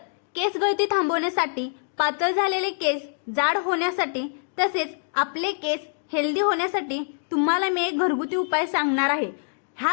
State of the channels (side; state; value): right; silent; digital silence